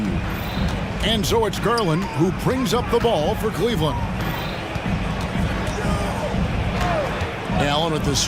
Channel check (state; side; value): identical; both; correlation 1.00